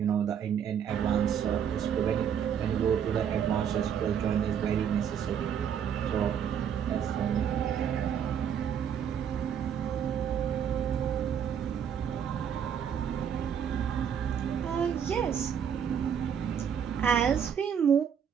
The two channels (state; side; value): quieter; left; 8.2 dB